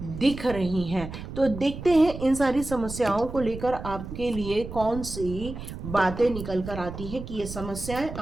रही हैं। तो देखते हैं इन सारी समस्याओं को लेकर आपके लिए कौन सी बातें निकल कर आती हैं कि ये समस्याएं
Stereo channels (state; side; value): noise; right; rumble, 10 dB below the sound